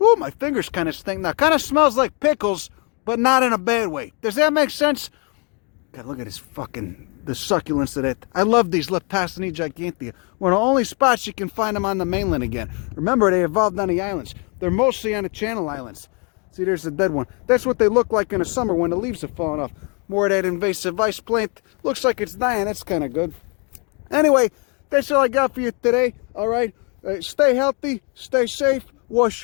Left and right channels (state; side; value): quieter; right; 34.8 dB